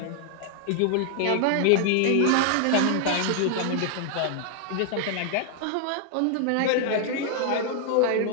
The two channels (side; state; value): both; different; correlation 0.00